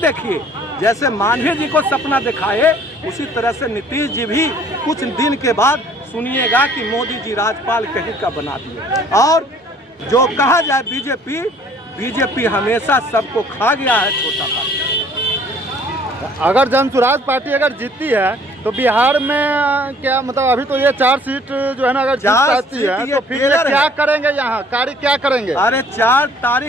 जैसे मांझी जी को सपना दिखाए उसी तरह से नीतीश जी भी कुछ दिन के बाद सुनिएगा कि मोदी जी राजपाल कहीं का बना दिए। और जो कहा जाए बीजेपी हमेशा सबको खा गया है, छोटा पार्टी। अगर जनसुराज पार्टी अगर जीतती है तो बिहार में क्या मतलब, अभी तो ये 4 सीट जो है ना अगर जीत जाती है तो फिर ये क्या करेंगे, यहाँ कार्य क्या करेंगे? अरे 4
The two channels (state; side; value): normal; both; correlation 0.56